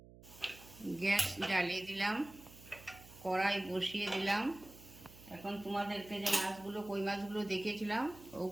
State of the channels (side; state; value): right; noise; hum, 20 dB below the sound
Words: গ্যাস জ্বালিয়ে দিলাম, কড়াই বসিয়ে দিলাম। এখন তোমাদেরকে যে মাছগুলো কই মাছগুলো দেখিয়েছিলাম